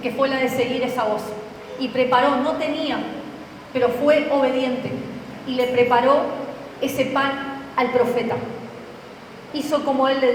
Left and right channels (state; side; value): identical; both; correlation 1.00